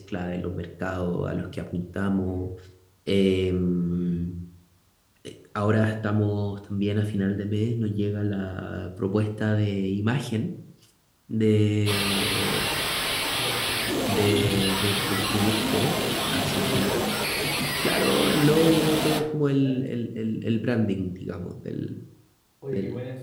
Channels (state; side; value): identical; both; correlation 1.00